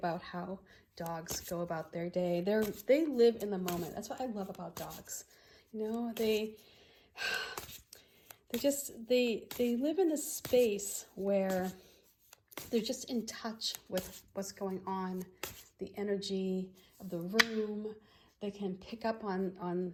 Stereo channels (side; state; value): both; identical; correlation 1.00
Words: how dogs go about their day. They live in the moment. That's what I love about dogs. You know, they live in this space where they're just in touch with what's going on, the energy of the room. They can pick up on